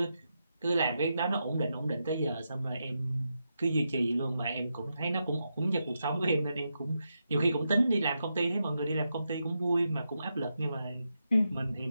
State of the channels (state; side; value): inverted; both; correlation -0.85